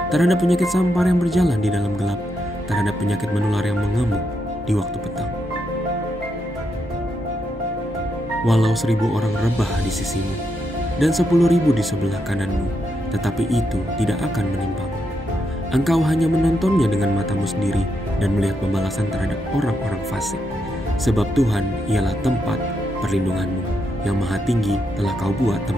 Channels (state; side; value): normal; both; correlation 0.81